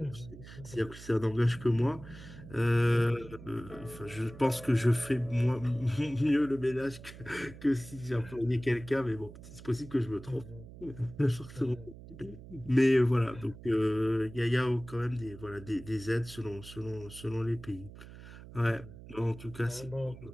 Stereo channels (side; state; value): right; noise; hum, 16 dB below the sound